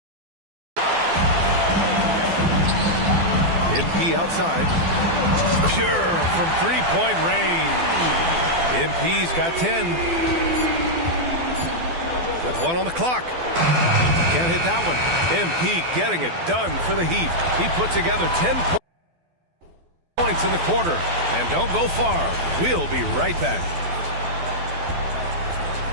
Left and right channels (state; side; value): late; left; 12 ms